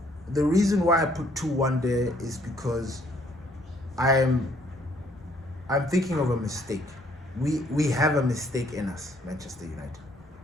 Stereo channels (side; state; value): both; normal; correlation 0.65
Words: reason why I put 2-1 there is because I'm thinking of a mistake. We have a mistake in us, Manchester United.